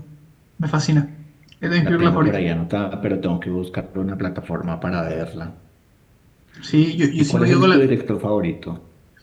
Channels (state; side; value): identical; both; correlation 1.00